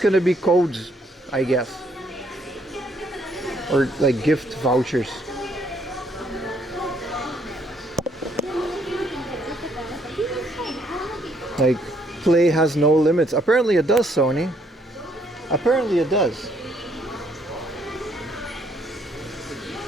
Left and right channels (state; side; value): normal; both; correlation 0.68